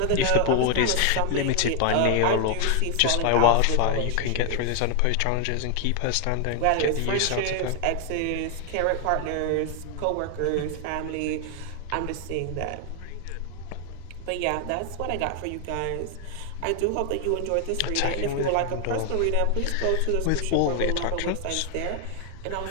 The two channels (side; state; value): both; different; correlation 0.00